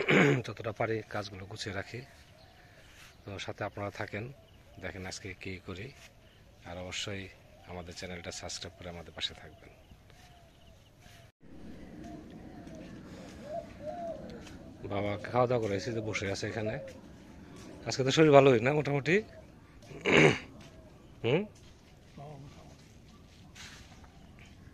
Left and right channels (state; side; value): identical; both; correlation 1.00